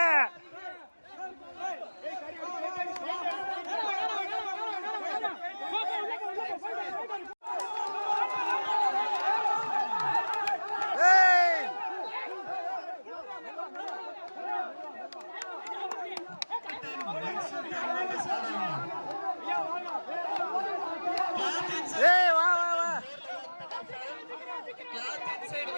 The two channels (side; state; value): both; inverted; correlation -1.00